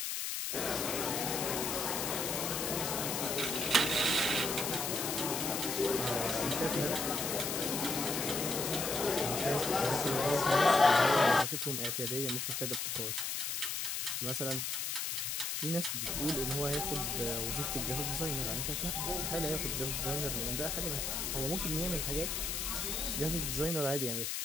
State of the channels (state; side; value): noise; left; hiss, 1 dB below the sound